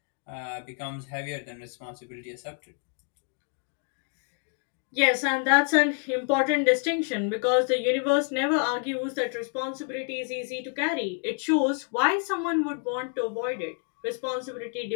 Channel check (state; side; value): quieter; right; 39.4 dB